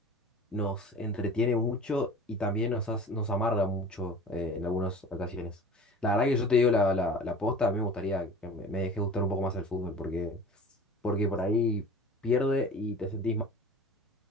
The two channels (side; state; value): both; normal; correlation 0.40